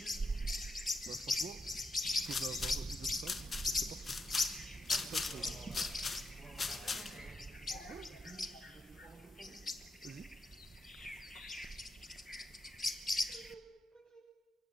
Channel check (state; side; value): normal; both; correlation 0.83